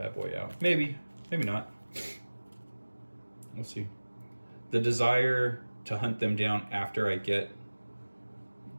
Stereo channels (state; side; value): inverted; both; correlation -1.00